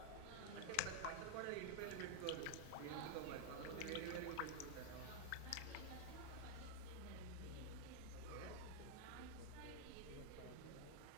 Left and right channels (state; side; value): different; both; correlation 0.00